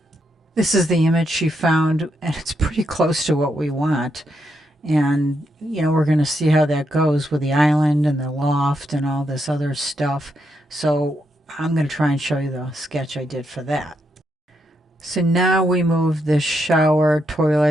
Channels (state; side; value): normal; both; correlation 0.80